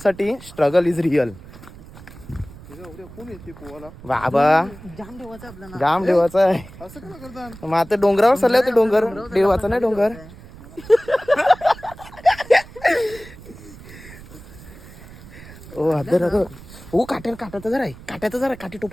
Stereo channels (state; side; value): noise; right; rumble, 18 dB below the sound